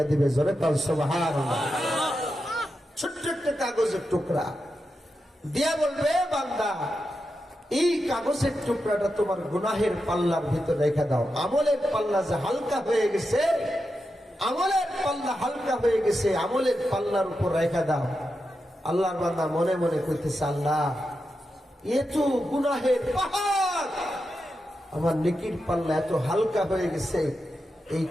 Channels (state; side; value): normal; both; correlation 0.88